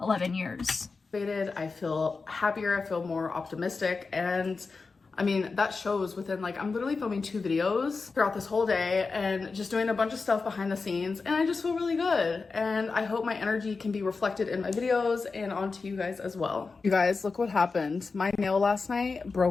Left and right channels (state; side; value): quieter; right; 4.3 dB